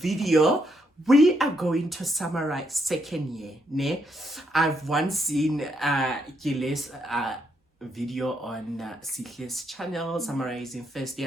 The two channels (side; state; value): both; normal; correlation 0.77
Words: we are going to summarize second year. Ne? I've once seen Gile's video on Sihle's channel summarizing first